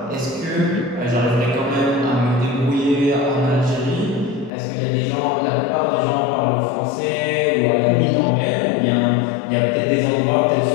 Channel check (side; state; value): right; drops out; at 4.5 s